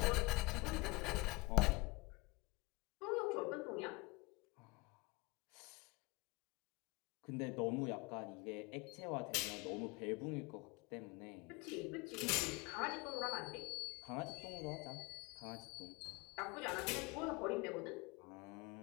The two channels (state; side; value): quieter; right; 23.8 dB